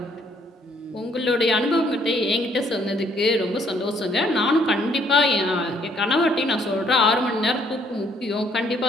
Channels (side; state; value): both; normal; correlation 0.66